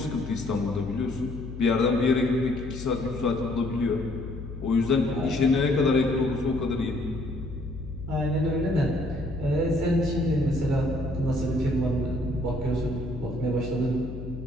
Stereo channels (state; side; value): noise; left; hum, 10 dB below the sound